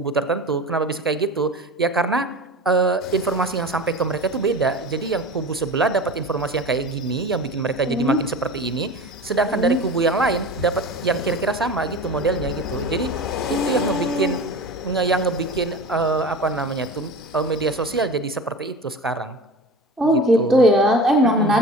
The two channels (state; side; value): normal; both; correlation 0.34